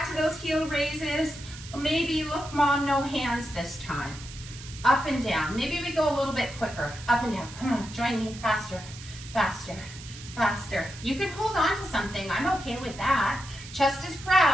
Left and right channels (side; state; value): right; noise; hiss, 15 dB below the sound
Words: to those heel raises. Maybe, look, Mom, no hands this time. Up and down. Maybe we go a little bit quicker. Up and down. Come on, join me. Faster, faster, faster. You can hold on to something. I'm okay with that. Chest is